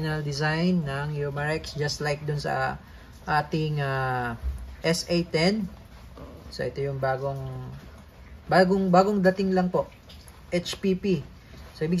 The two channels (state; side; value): identical; both; correlation 1.00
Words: design ng Umarex, just like dun sa ating SA10. So ito yung bagong dating lang po. HPP. So